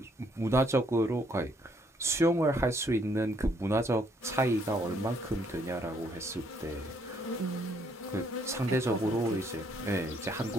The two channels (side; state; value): both; normal; correlation 0.69